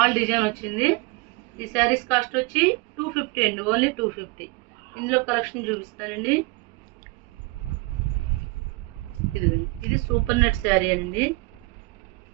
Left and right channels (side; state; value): left; quieter; 24.3 dB